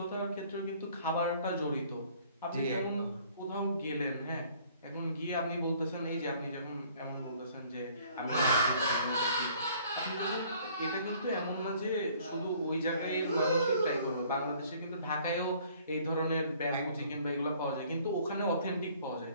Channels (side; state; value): both; inverted; correlation -0.57